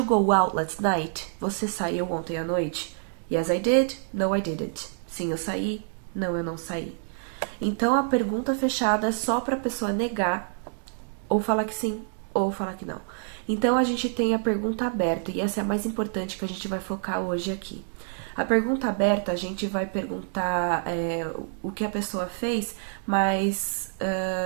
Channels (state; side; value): silent; left; 60 dB below the other